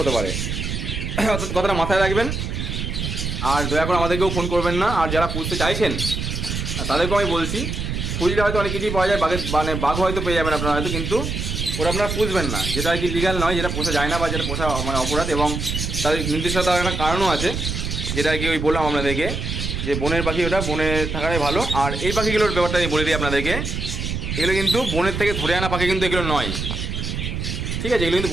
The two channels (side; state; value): right; noise; rumble, 3 dB below the sound